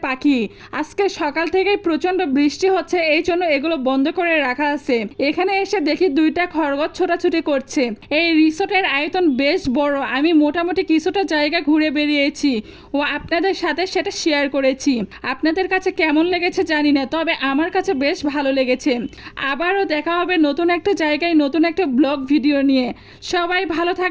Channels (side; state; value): both; identical; correlation 1.00